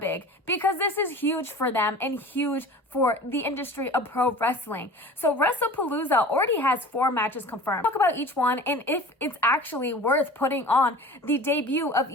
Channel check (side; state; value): both; normal; correlation 0.39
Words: because this is huge for them and huge for the industry of pro wrestling. So WrestlePalooza already has 4 matches confirmed. Talk about each one and if it's actually worth putting on the debut of